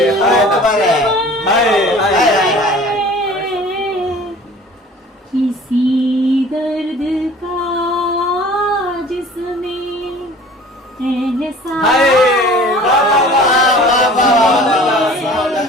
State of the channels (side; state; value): both; normal; correlation 0.46